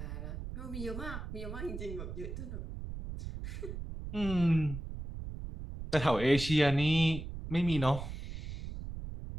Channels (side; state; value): right; noise; rumble, 8 dB below the sound